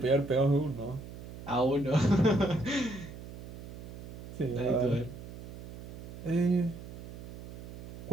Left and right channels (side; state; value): right; noise; hum, 12 dB below the sound